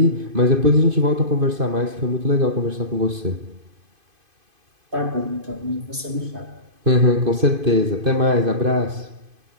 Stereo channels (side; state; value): left; late; 2.5 ms